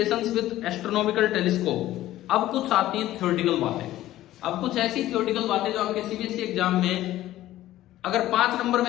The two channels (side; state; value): right; quieter; 14.6 dB